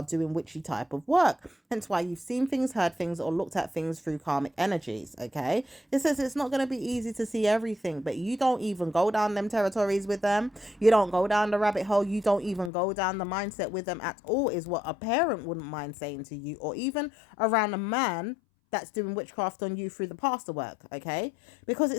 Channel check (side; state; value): right; drops out; at 12.7 s